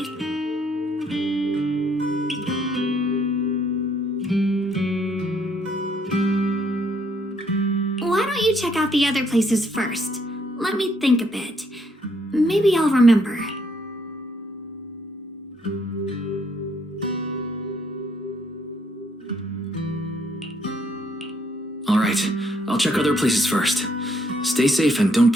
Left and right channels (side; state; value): both; normal; correlation 0.70